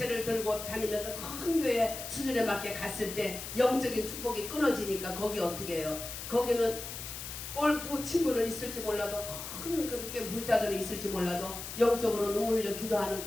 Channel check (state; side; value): noise; left; hiss, 8 dB below the sound